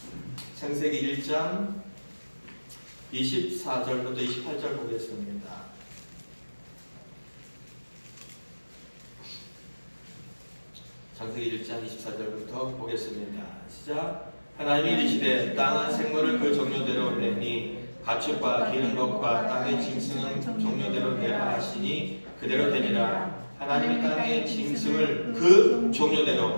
창세기 1장 24절부터 28절 보겠습니다. 창세기 1장 24절부터 보겠습니다. 시작. 하나님이 이르시되 땅은 생물을 그 종류대로 내니 가축과 기는 것과 땅의 짐승은 종류대로 내라 하시니 그대로 되니라. 하나님이 땅의 짐승을 그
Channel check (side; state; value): both; inverted; correlation -1.00